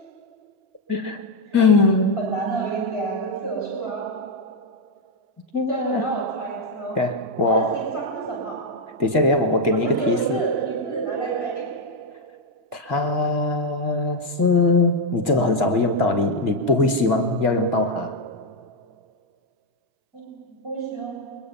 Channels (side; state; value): left; late; 2.2 ms